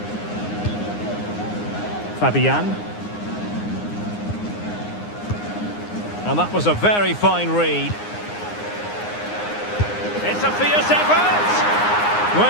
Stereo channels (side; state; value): right; late; 9.7 ms